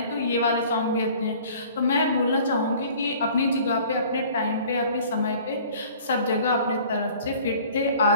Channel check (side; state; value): both; inverted; correlation -0.50